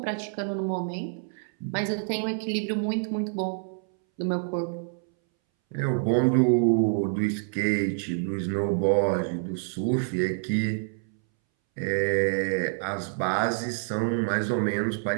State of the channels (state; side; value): silent; left; 60 dB below the other